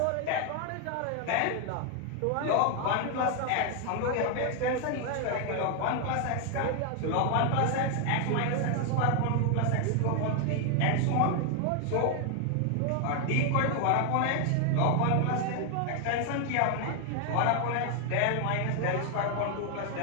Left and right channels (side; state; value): both; different; correlation 0.00